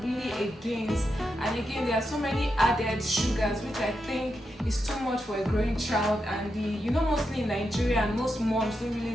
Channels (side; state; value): both; normal; correlation 0.86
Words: really against. And again, there are so many added sugars which I think is too much for a growing child. And mostly in Nigeria, and most moms don't really